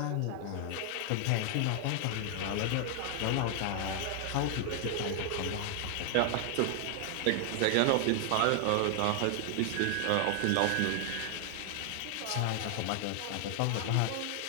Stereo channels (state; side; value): different; both; correlation 0.00